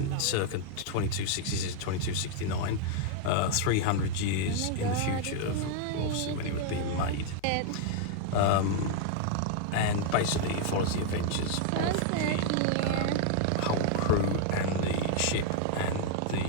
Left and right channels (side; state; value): both; different; correlation 0.00